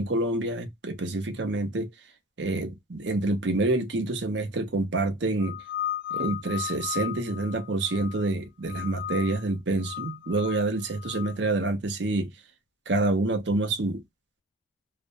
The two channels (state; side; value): normal; both; correlation 0.38